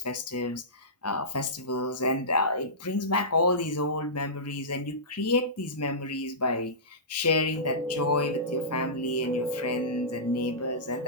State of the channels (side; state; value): both; normal; correlation -0.20